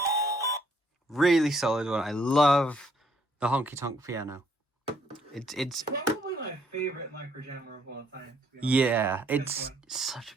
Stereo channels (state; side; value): normal; both; correlation 0.67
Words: Really solid one. I love the honky tonk piano. It's probably my favorite microjammer of all time. To be honest. Yeah, it's such a